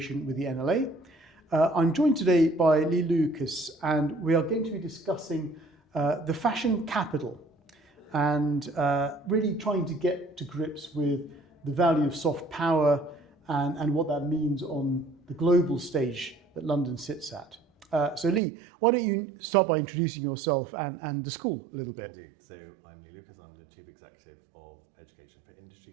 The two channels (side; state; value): left; drops out; at 18.4 s